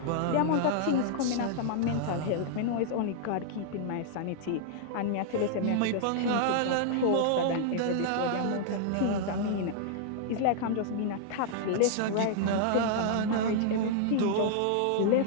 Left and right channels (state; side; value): different; both; correlation -0.01